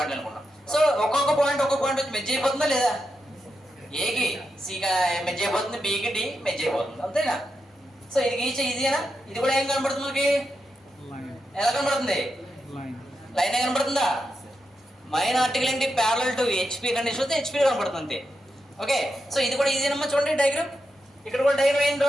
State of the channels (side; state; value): both; normal; correlation 0.86